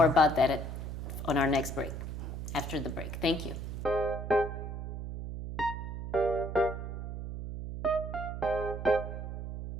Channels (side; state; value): right; noise; hum, 6 dB below the sound